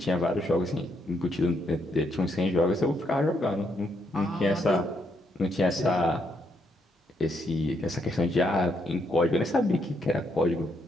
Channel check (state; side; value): normal; both; correlation 0.76